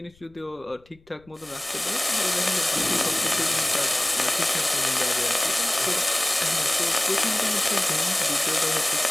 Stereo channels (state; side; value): noise; left; rumble, 30 dB below the sound